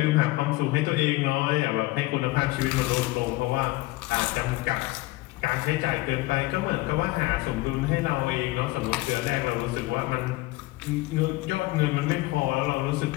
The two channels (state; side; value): quieter; right; 19.8 dB